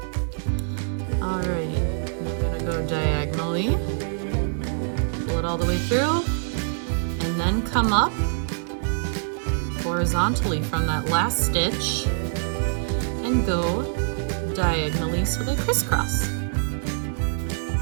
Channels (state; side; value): silent; left; digital silence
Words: Alrighty, I'm gonna go diagonally, pull it all the way through, and then come up horizontally from that last stitch and go diagonally so they crisscross.